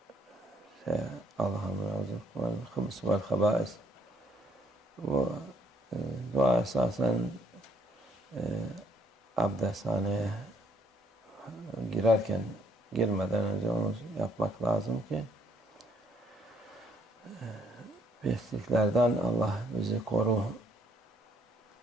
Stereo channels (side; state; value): both; normal; correlation 0.68